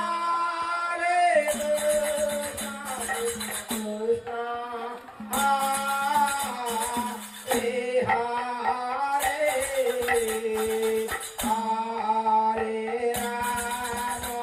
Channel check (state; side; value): identical; both; correlation 1.00